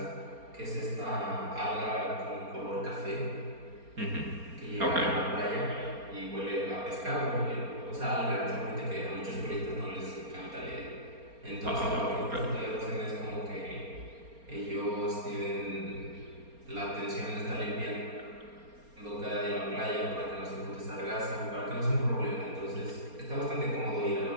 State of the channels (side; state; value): left; late; 4.3 ms